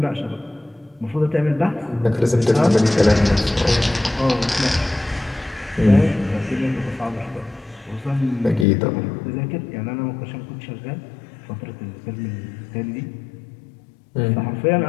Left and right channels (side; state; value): right; drops out; at 8.7 s